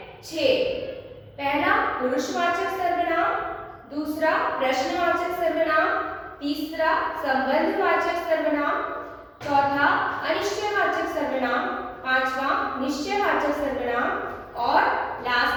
6। पहला पुरुषवाचक सर्वनाम, दूसरा प्रश्नवाचक सर्वनाम, तीसरा संबंधवाचक सर्वनाम, चौथा अनिश्चयवाचक सर्वनाम, पांचवा निश्चयवाचक सर्वनाम और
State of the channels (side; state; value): both; identical; correlation 1.00